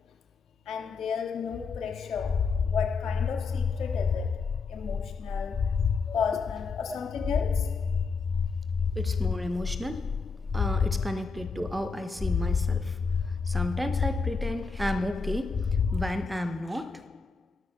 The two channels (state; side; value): quieter; right; 4.5 dB